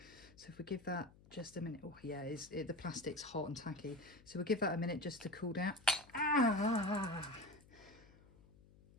So if we give that just a minute, oh yeah, the plastic's hot and tacky. So we'll give that a minute just to cool down. Ah!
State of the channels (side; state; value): left; noise; hum, 24 dB below the sound